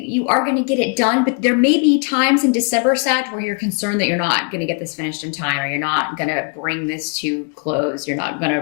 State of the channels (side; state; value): right; quieter; 35.8 dB